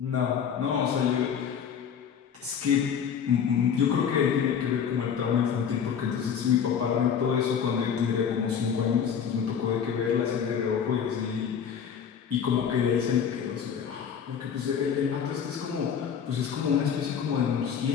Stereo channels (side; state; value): right; quieter; 7.6 dB